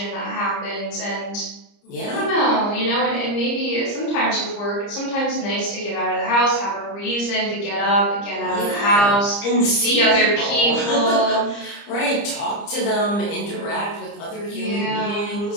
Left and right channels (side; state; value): right; late; 30 ms